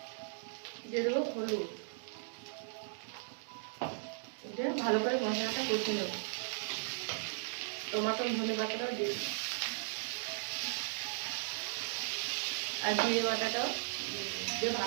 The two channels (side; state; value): left; silent; digital silence